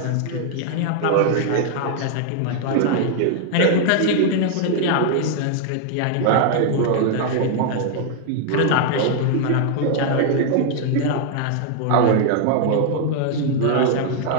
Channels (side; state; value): both; different; correlation 0.00